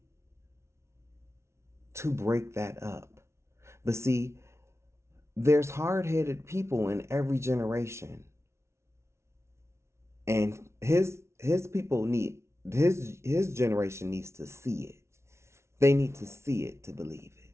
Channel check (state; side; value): late; left; 0.13 ms